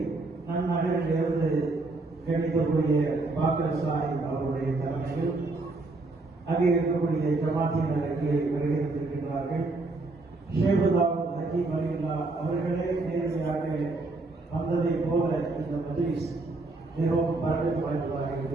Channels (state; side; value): quieter; left; 3.2 dB